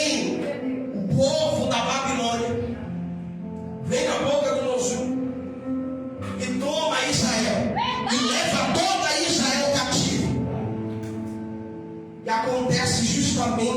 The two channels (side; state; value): both; identical; correlation 1.00